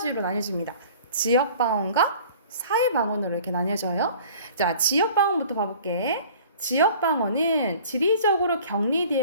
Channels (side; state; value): both; inverted; correlation -0.47